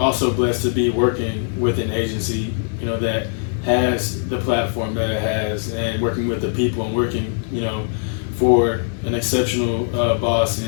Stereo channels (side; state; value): right; silent; digital silence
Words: blessed to be working with an agency, you know, that has the platform that it has, and working with the people and working, you know, for an exceptional boss